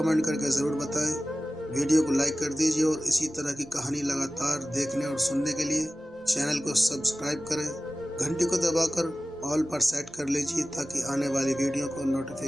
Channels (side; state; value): left; noise; rumble, 30 dB below the sound